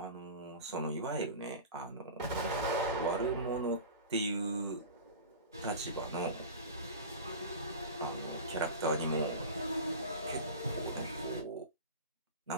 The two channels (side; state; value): both; inverted; correlation -0.32